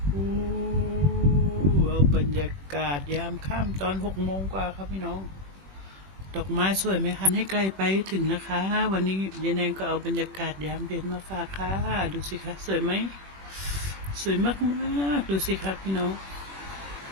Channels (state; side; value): late; left; 21 ms